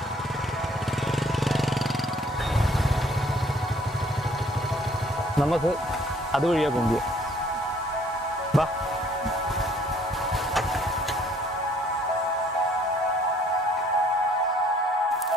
നമുക്ക് അതുവഴിയാ പോകുക. വാ.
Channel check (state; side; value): normal; both; correlation 0.60